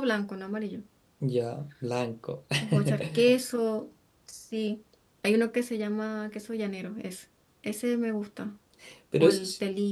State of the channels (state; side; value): identical; both; correlation 1.00